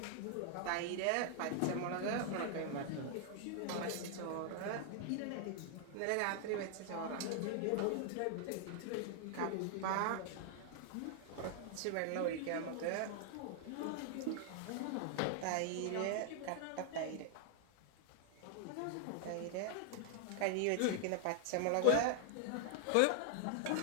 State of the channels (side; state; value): both; different; correlation 0.00